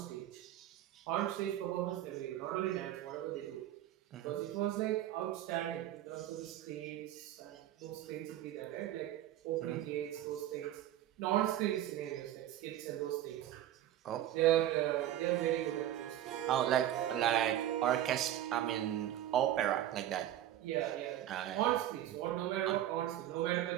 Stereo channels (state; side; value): quieter; left; 12.4 dB